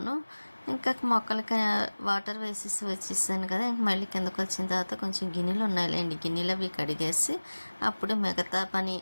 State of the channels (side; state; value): both; inverted; correlation -1.00